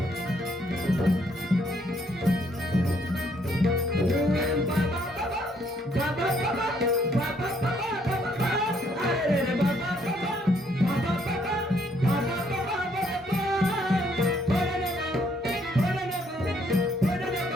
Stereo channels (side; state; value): both; normal; correlation 0.68